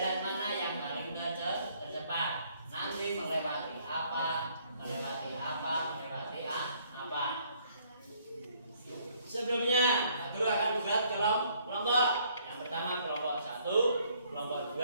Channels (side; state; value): both; inverted; correlation -0.65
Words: mana yang paling tercepat. Nanti melewati apa, melewati apa, melewati apa. Sebelumnya, guru akan buat kelompok. Yang pertama kelompok 1, kelompok